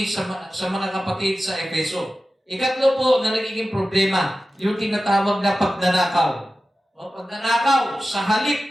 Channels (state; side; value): normal; both; correlation 0.94